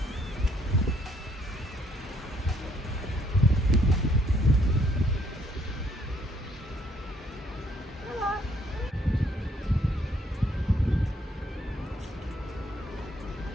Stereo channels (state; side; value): normal; both; correlation 0.67